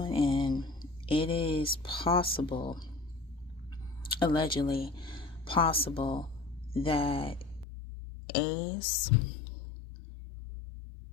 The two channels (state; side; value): drops out; right; at 7.7 s